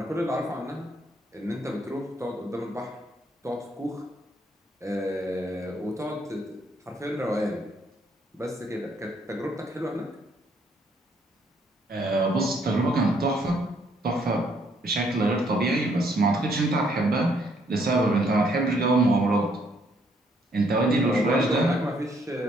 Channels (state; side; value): normal; both; correlation 0.69